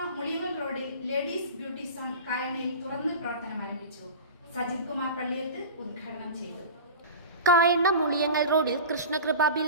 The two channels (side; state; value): both; inverted; correlation -0.33